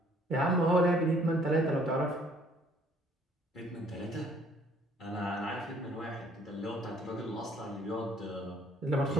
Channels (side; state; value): both; normal; correlation 0.60